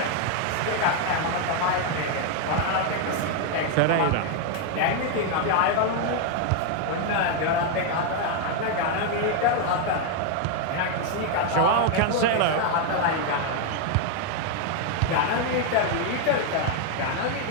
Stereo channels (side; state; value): both; different; correlation 0.01